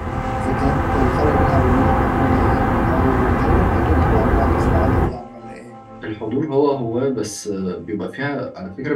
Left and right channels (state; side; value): identical; both; correlation 1.00